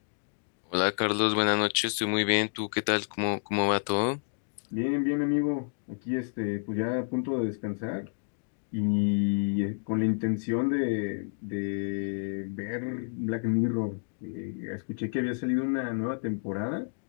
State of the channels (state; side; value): silent; right; digital silence